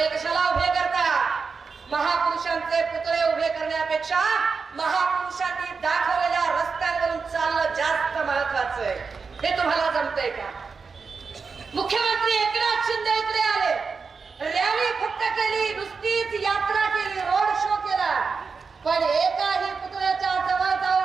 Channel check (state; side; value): quieter; left; 5.0 dB